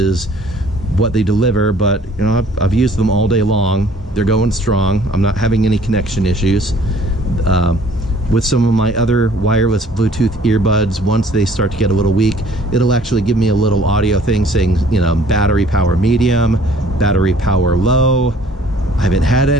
what they deliver, but you know, I've used them all day long. They're going strong. I'm not having any connection issues. With some of my other wireless Bluetooth earbuds, once they start to get a little weak, it'll actually give me a little audio thing saying, you know, battery power medium, battery power low. I haven't had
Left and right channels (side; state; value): both; normal; correlation 0.56